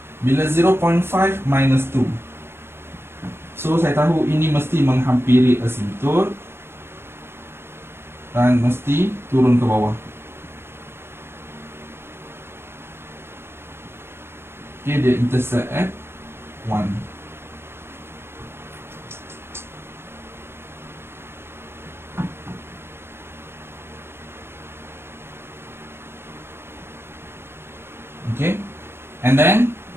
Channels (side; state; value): left; late; 0.12 ms